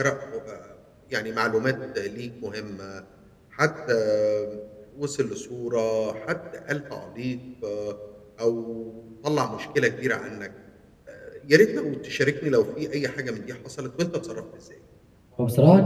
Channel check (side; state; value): both; identical; correlation 1.00